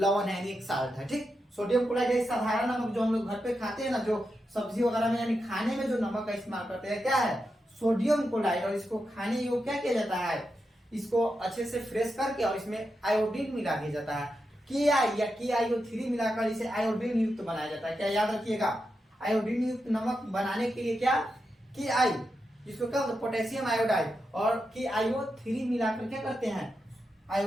है, एक साल्ट है। ठीक, सोडियम क्लोराइड एक साधारण नमक जो हम लोग घर पे खाते हैं ना, जो सब्जी वगैरह में यानी खाने में जो नमक का इस्तेमाल करते हैं, क्या है, सोडियम क्लोराइड। और इसको खाने योग्य क्या किया जाता है, इसको अच्छे से फ्रेश करके और इसमें आयोडीन मिला दिया जाता है, के आई या KiO3 मिलाकर इसे आयोडीन युक्त बनाया जाता है। क्या याद रखिएगा, आयोडीन युक्त नमक बनाने के लिए क्या Ki, जिसको क्या होता है पोटेशियम आयोडाइड, और KiO3 मिलाकर क्या करते हैं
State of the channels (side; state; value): both; normal; correlation 0.87